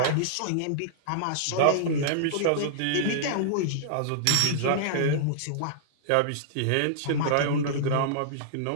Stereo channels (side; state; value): both; different; correlation -0.02